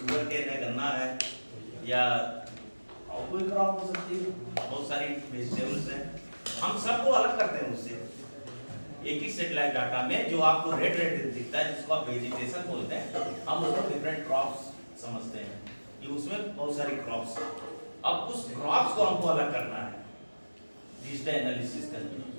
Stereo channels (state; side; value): inverted; both; correlation -1.00